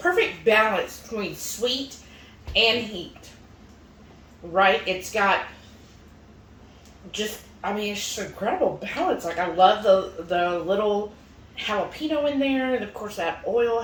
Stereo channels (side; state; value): both; identical; correlation 1.00